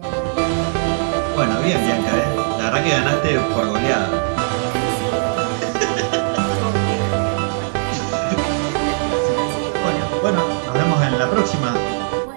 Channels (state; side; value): silent; left; 65 dB below the other